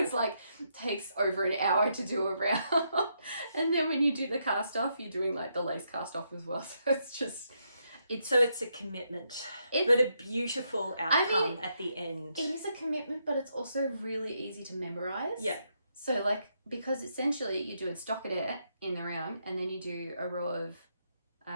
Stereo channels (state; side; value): inverted; both; correlation -0.78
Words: like takes over an hour to do a round. And then when you do the cast off, you're doing like the lace cast off as well. So it's just it's a commitment, but a beautiful outcome at the end. It is a commitment, but it's also really easy to memorize. Yeah. So like, because essentially you do a stockinette in the round, and then you do a row of